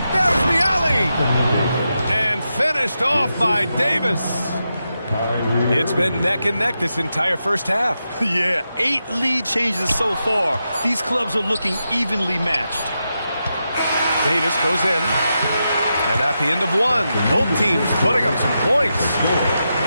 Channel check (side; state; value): both; inverted; correlation -0.87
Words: there's the alley! And finished off by Davis. It's been neck and neck this entire first half. Yeah, 8 lead changes so far. These clubs are looking evenly matched. Davis goes in. And at the end of one, both teams putting up some points.